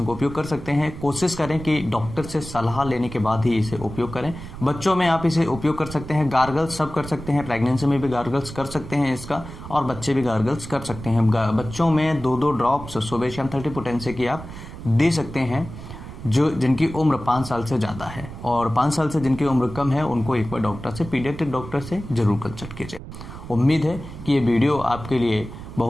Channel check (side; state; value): right; noise; rumble, 12 dB below the sound